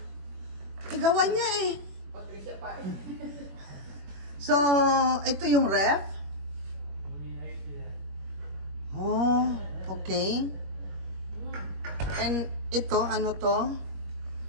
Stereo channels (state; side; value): late; left; 21 ms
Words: Igawan niya eh. Patricia Pie. So, ito yung ref. Oh, okay. And ito, ano to?